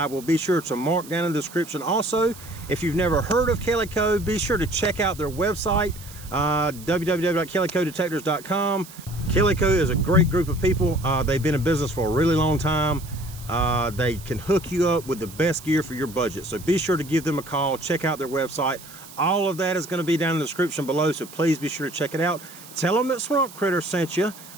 will be sure to mark down in the description. Also, if you've never heard of Kellyco, be sure to check out their website, www.kellycodetectors.com. Kellyco is a great group of people. They've been in business for a really long time. They can hook you up with the best gear for your budget. So be sure to give them a call, check out their website. All of that is going to be down in the description below, so please be sure to check it out. Tell them that SwampKritter sent you.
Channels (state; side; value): noise; right; hiss, 18 dB below the sound